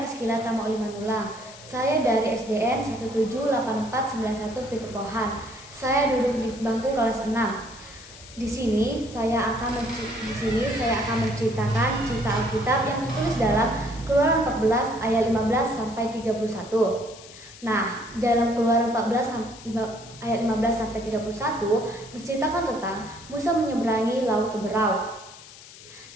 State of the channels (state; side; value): noise; left; hiss, 18 dB below the sound